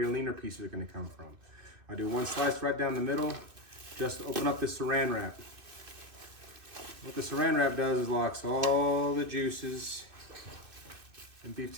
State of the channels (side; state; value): left; late; 2.5 ms